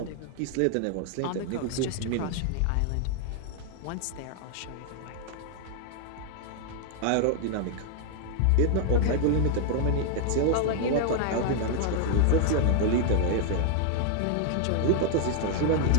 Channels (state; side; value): different; both; correlation 0.00